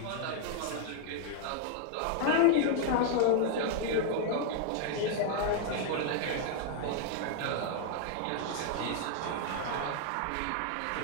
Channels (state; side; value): different; both; correlation 0.00